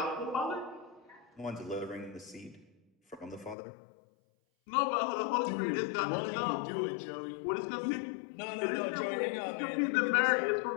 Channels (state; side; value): drops out; right; at 3.6 s